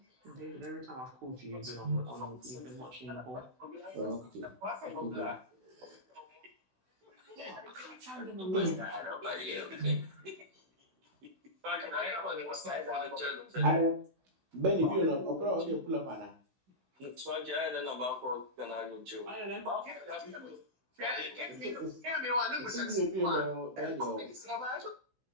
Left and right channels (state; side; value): late; left; 16 ms